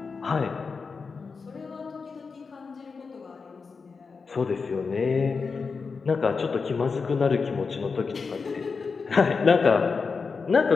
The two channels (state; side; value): quieter; right; 4.9 dB